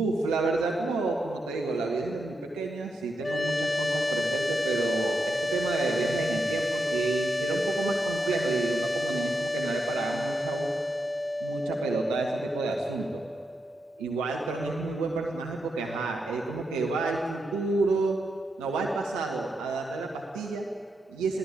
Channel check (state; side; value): normal; both; correlation 0.85